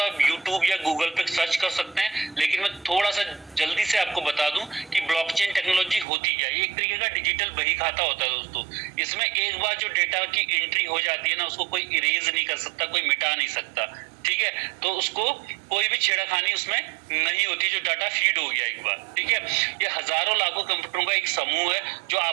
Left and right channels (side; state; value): left; drops out; at 6.1 s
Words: आप यूट्यूब या गूगल पे सर्च कर सकते हैं, लेकिन मैं थोड़ा सा जल्दी से आपको बता दूं कि ब्लॉकचेन टेक्नोलॉजी होती क्या है। ये एक तरीके का डिजिटल बही खाता होता है दोस्तों। इसमें एक बार जो डेटा की एंट्री हो जाती है ना, उसको कोई इरेज नहीं कर सकता, कोई मिटा नहीं सकता, ठीक है। तो उसको कोई भी छेड़खानी उसमें नहीं होती, जो डाटा फीड हो गया एक बार, ठीक है। ये हजारों लाखों कंप्यूटरों का एक समूह है जो